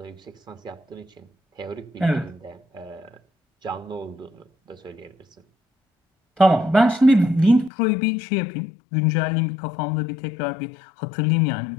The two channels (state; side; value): drops out; right; at 7.7 s